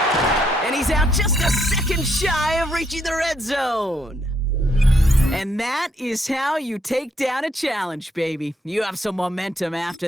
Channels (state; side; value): normal; both; correlation 0.74